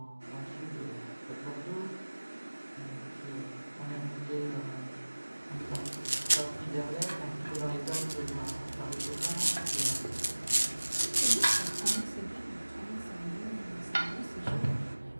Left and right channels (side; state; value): both; inverted; correlation -1.00